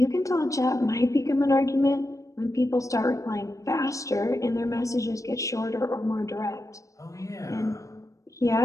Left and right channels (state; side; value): late; right; 0.16 ms